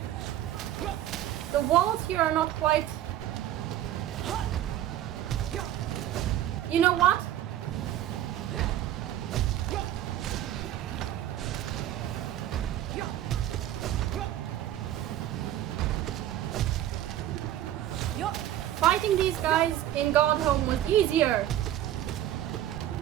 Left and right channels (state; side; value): quieter; left; 12.5 dB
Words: The walls here are not quite... You know what? Fighting these guys in Godhome was easier.